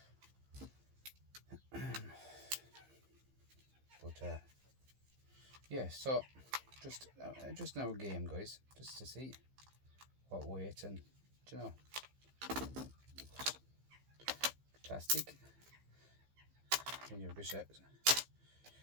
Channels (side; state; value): left; late; 15 ms